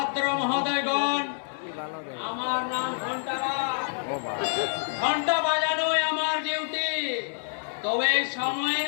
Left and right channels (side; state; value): right; silent; digital silence